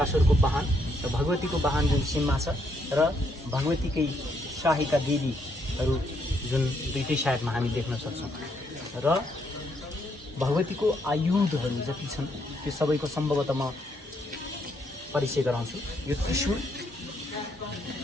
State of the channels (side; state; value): both; normal; correlation 0.74